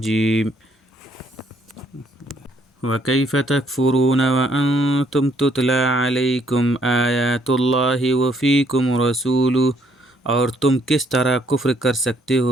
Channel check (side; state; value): both; normal; correlation 0.67